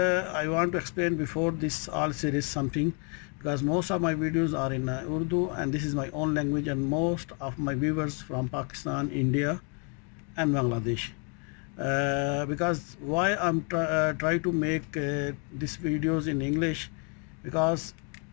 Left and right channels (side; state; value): right; quieter; 37.5 dB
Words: want to explain before this all series something, because most of my videos are in Urdu, and this is my own language, and most of my viewers from Pakistan, India and Bangladesh. Because why I'm try to make these videos in English, because